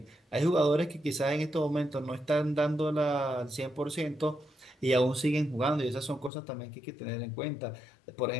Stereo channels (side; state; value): right; drops out; at 6.3 s